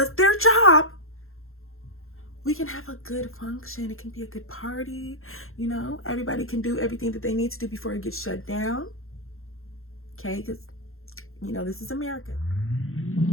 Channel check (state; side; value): late; right; 0.61 ms